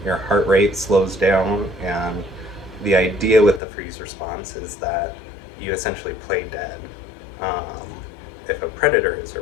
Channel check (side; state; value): right; drops out; at 3.6 s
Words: your heart rate slows down, and the idea with the freeze response is that you essentially play dead if a predator is